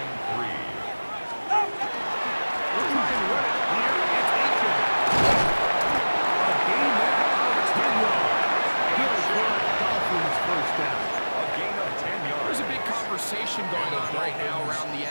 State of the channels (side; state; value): both; inverted; correlation -1.00